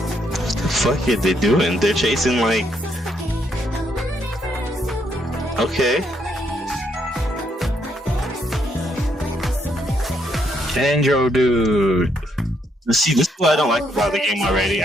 Fuck it, they doing? They're chasing like. Okay. Andro, dude. See, this is what I don't like about the game already.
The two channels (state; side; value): normal; both; correlation 0.73